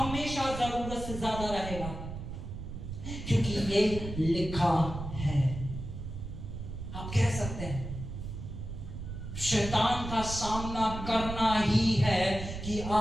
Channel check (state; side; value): noise; right; rumble, 8 dB below the sound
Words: जरूरत से ज्यादा रहेगा, क्योंकि ये लिखा है। आप कह सकते हैं शैतान का सामना करना ही है कि